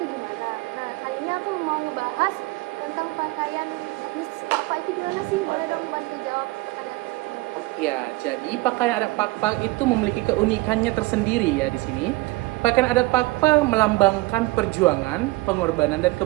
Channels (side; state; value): left; quieter; 21.9 dB